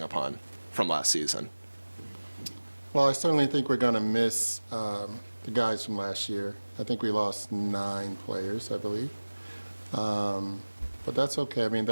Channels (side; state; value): both; inverted; correlation -1.00